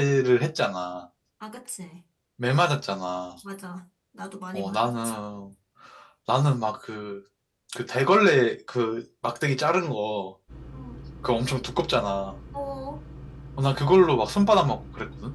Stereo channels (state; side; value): identical; both; correlation 1.00